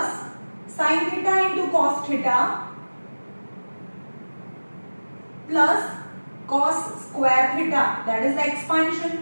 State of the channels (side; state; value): both; inverted; correlation -1.00